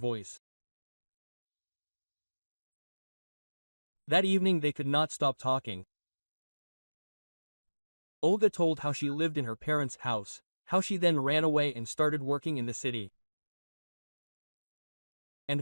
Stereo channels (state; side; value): inverted; both; correlation -1.00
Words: That evening they could not stop talking. Olga told how she lived in her parents' house, how she then ran away and started working in the city. And